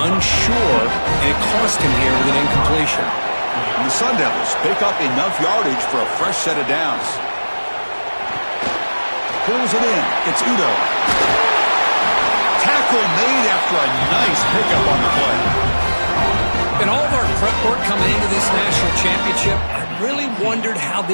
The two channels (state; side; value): inverted; both; correlation -1.00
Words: unsure, and it cost him here with an incompletion. And the Sun Devils pick up enough yardage for a fresh set of downs. Pulls it in. It's Udo. Tackle made after a nice pickup on the play. In all of our prep work coming into this national championship, I really wondered how